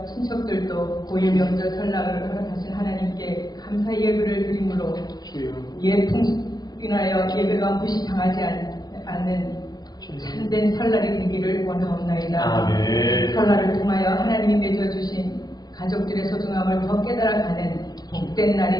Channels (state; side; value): late; right; 0.19 ms